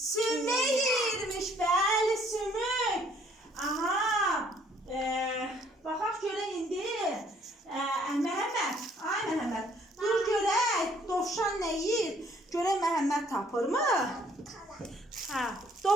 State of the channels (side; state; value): both; normal; correlation 0.62